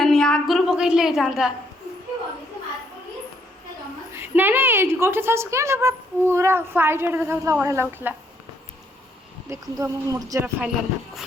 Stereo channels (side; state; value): both; normal; correlation 0.70